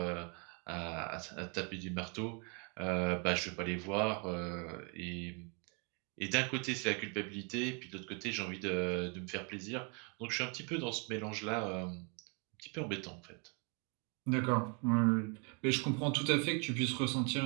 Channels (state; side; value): quieter; left; 34.7 dB